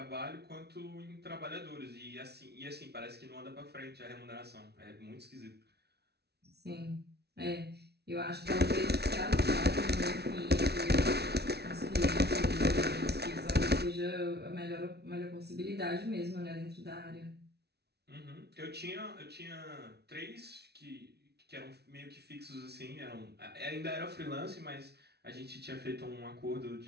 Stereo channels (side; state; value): left; late; 0.48 ms